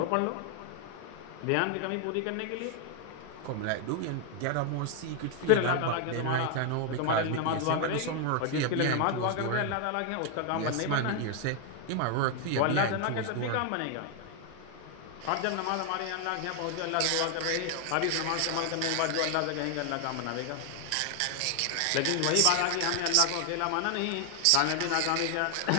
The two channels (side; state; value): both; different; correlation 0.00